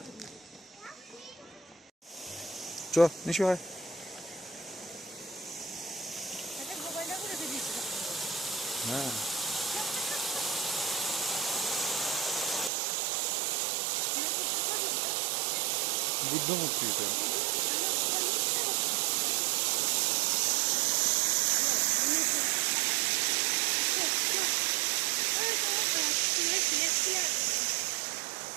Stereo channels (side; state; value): left; drops out; at 12.7 s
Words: চ নিশু হয়। হ্যাঁ, বুদ্ধ মূর্তি এটা।